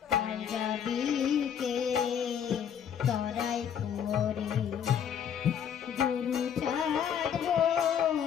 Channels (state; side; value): quieter; right; 8.5 dB